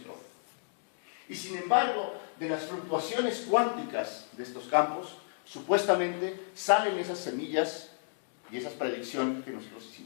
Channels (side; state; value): right; silent; digital silence